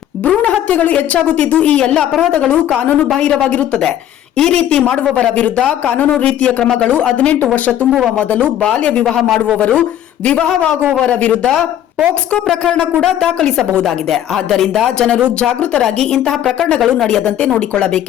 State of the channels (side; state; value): right; quieter; 11.3 dB